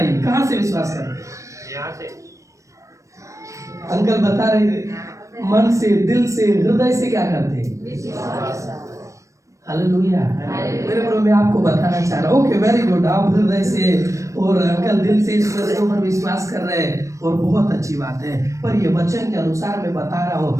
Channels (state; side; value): late; left; 0.15 ms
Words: कहां से विश्वास करते हैं? यहाँ से। अंकल बता रहे थे, मन से, दिल से, हृदय से क्या करते हैं? हालेलुया। मेरे प्रभु, मैं आपको बताना चाह रहा हूँ, ओके वेरी गुड, आप हृदय से और अंकल दिल से इस वचन पर विश्वास कर रहे हैं, और बहुत अच्छी बात है। पर ये वचन के अनुसार मैं बता रहा